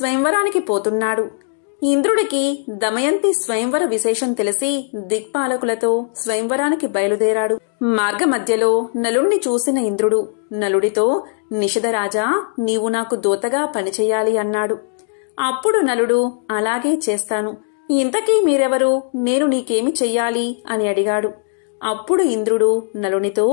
పోతున్నాడు. ఇంద్రుడికి దమయంతి స్వయంవర విశేషం తెలిసి దిక్పాలకులతో స్వయంవరానికి బయలుదేరాడు. మార్గమధ్యలో నలుణ్ణి చూసిన ఇంద్రుడు నలుడితో, నిషధరాజా, నీవు నాకు దూతగా పనిచేయాలి అన్నాడు. అప్పుడు నలుడు, అలాగే చేస్తాను. ఇంతకీ మీరెవరు? నేను నీకేమి చెయ్యాలి అని అడిగాడు. అప్పుడు ఇంద్రుడు నలునితో,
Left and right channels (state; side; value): silent; right; digital silence